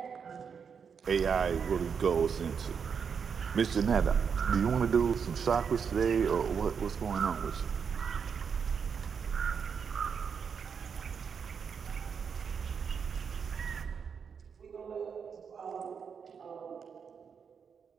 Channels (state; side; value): quieter; left; 6.6 dB